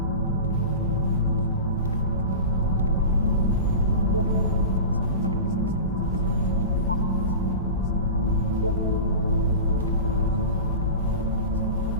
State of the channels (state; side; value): inverted; both; correlation -0.31